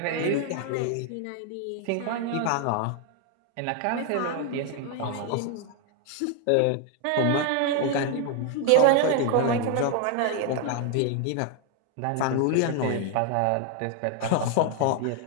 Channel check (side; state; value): both; different; correlation 0.00